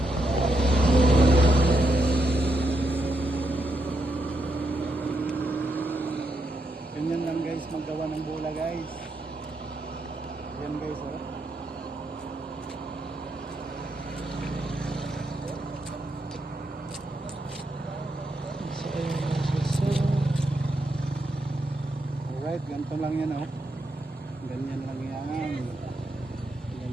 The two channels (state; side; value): normal; both; correlation 0.81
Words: Ganyan lang guys, maggawa ng bula guys. Yan guys, oh. Alright, ganito lang yan, oh. Ganyan lang yan.